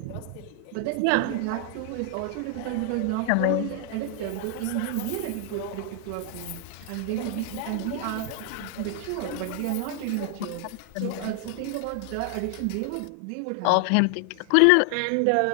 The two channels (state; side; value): different; both; correlation 0.00